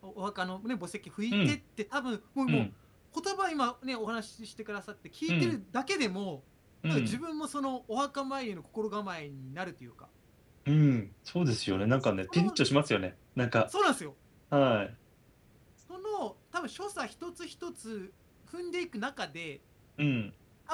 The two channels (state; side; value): identical; both; correlation 1.00